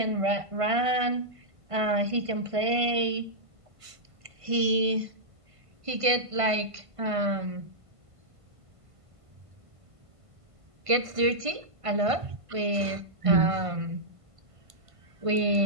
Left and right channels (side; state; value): left; late; 1.5 ms